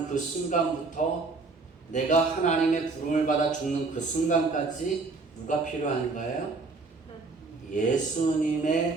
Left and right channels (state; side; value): quieter; left; 3.9 dB